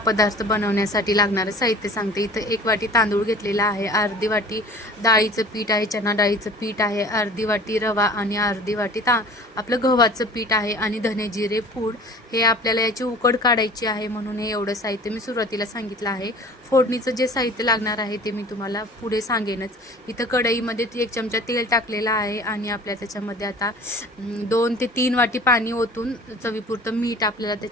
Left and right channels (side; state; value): both; normal; correlation 0.45